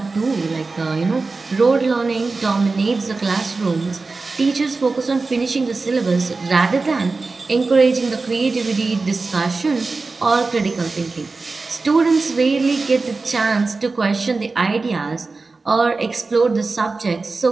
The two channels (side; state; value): left; quieter; 3.9 dB